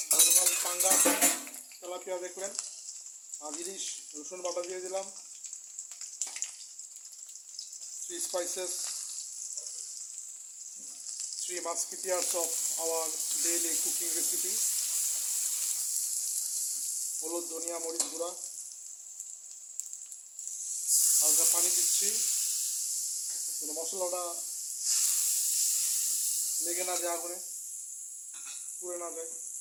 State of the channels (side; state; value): both; identical; correlation 1.00